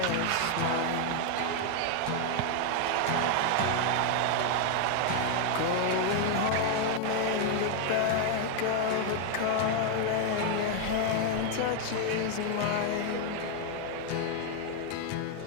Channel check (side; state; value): both; different; correlation 0.00